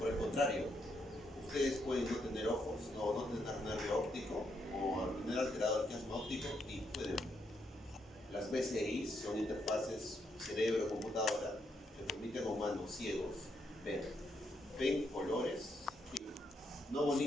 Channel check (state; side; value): normal; both; correlation 0.78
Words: el contrario, ustedes pueden no tener ojos, o no tener nervio óptico, o tener alterado el chiasma óptico y pueden ver. Las BCI son interfaces cerebro-computadora que permiten a humanos ciegos ver. ¿Ven colores? Sí. No